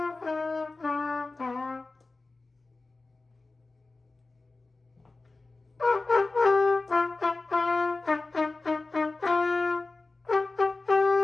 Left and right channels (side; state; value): right; quieter; 3.4 dB